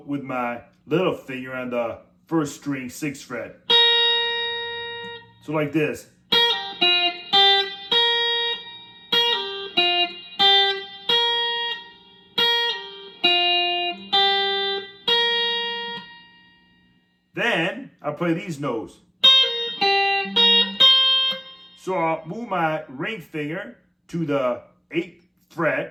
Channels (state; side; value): identical; both; correlation 1.00